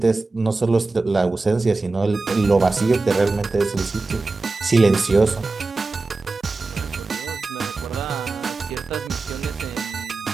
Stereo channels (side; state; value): left; quieter; 3.6 dB